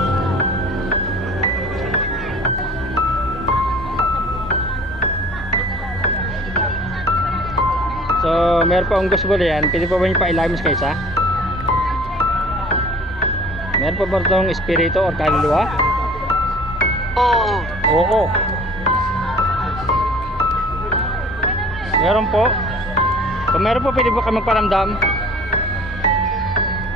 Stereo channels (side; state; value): both; normal; correlation 0.48